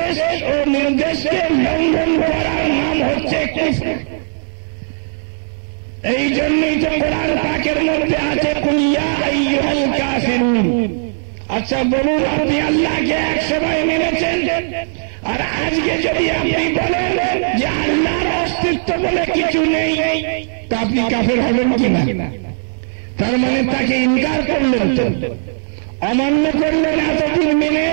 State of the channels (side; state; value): left; silent; digital silence